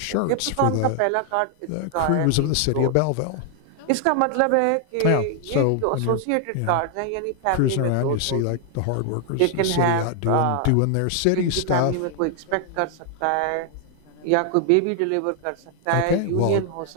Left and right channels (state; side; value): different; both; correlation 0.00